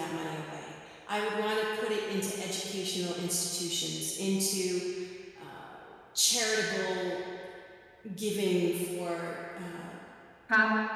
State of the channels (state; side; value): identical; both; correlation 1.00